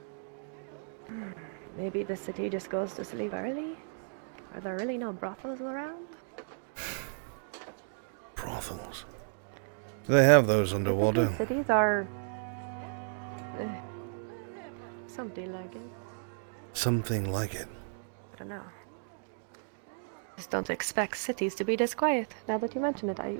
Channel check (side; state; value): left; silent; digital silence